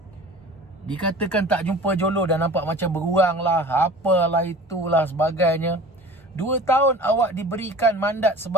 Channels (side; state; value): both; normal; correlation 0.41